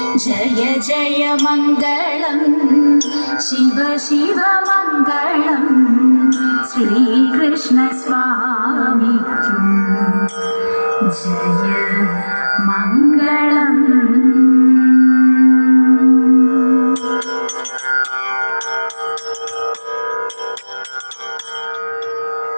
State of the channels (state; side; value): inverted; both; correlation -1.00